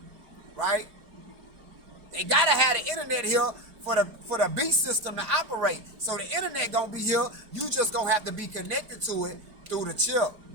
Right? They gotta have the internet here for the beast system to operate. So the internet gonna be here. You just gonna have to be connected to it through the chip.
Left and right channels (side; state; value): left; late; 4.7 ms